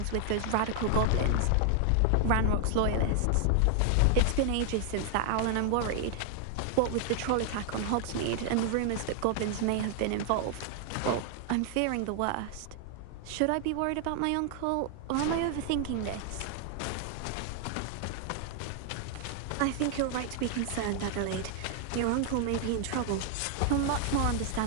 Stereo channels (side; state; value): both; different; correlation 0.00